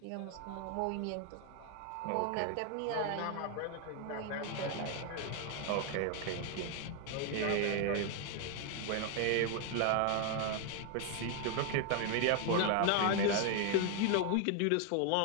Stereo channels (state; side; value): different; both; correlation 0.00